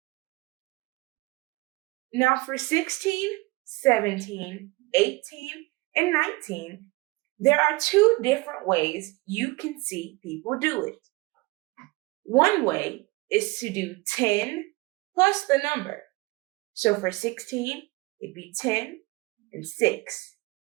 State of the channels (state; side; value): quieter; left; 23.1 dB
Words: Now for 16, 17, 18, and 19, there are 2 different ways you can see people do it. One way is to do 10 plus the number. So for 16, it'd be 10 and 6.